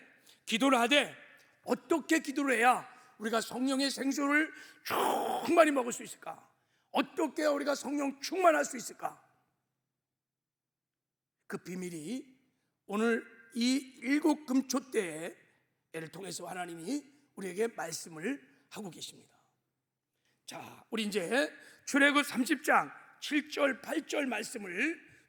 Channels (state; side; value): identical; both; correlation 1.00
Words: 기도를 하되 어떻게 기도를 해야 우리가 성령의 생수를 충만히 먹을 수 있을까? 어떻게 우리가 성령 충만할 수 있을까? 그 비밀이 오늘 이 7금초대를 통해서 하나님이 우리에게 말씀을 하고 계십니다. 자, 우리 이제 출애굽 30장 7절 8절 말씀을